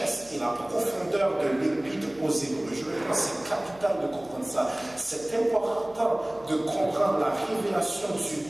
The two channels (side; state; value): right; noise; hum, 24 dB below the sound